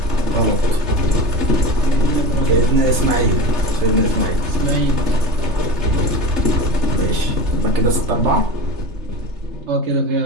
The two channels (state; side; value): late; left; 3.3 ms